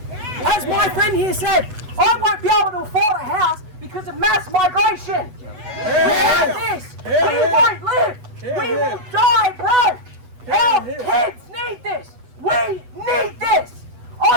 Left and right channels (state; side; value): late; left; 8.1 ms